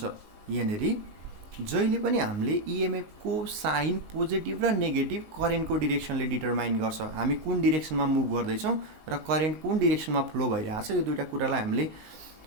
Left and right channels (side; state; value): left; late; 19 ms